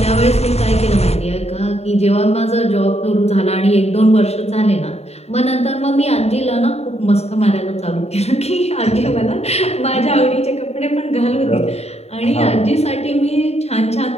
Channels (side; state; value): right; late; 0.31 ms